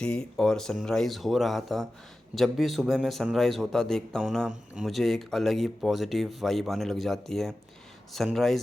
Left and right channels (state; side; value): normal; both; correlation 0.94